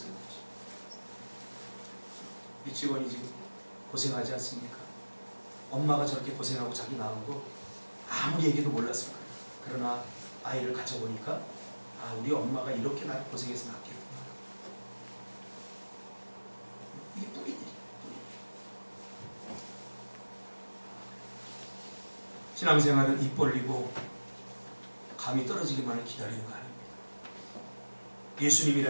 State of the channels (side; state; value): both; inverted; correlation -1.00